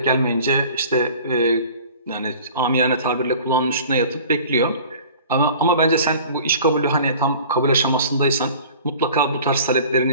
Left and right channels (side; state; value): both; inverted; correlation -0.45